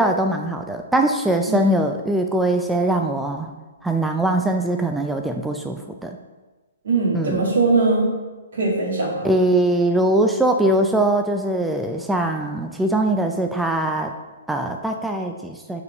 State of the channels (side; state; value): both; normal; correlation 0.28